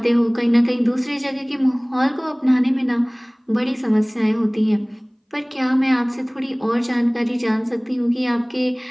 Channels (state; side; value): identical; both; correlation 1.00